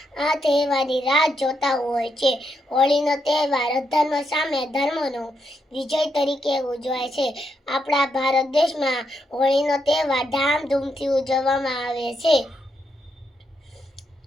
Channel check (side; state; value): both; normal; correlation 0.80